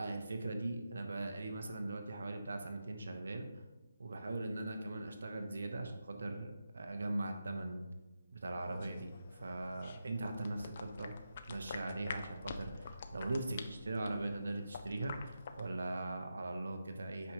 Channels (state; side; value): inverted; both; correlation -0.88